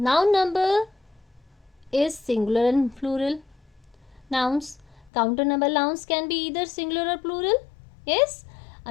number is singular and plural nouns. Countable nouns can be either singular or plural. Yes?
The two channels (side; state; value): right; drops out; at 5.1 s